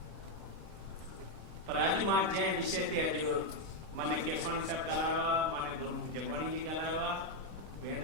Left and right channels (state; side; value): late; left; 26 ms